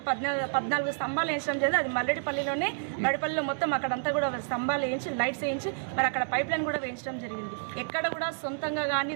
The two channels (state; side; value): silent; left; digital silence